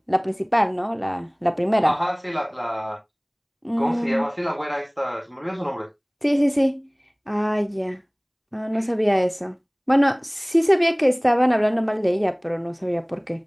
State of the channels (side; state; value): both; identical; correlation 1.00